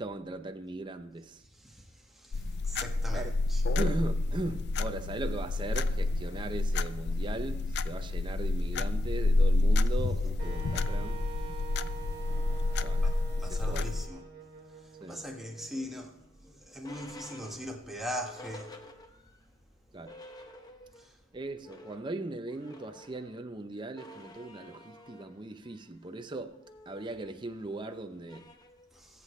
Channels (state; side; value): normal; both; correlation 0.84